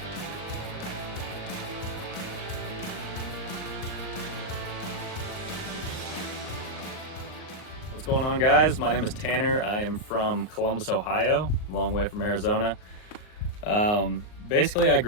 What's going on, guys? My name is Tanner. I am from Columbus, Ohio, a long way from Arizona. Basically, I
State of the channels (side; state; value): right; late; 38 ms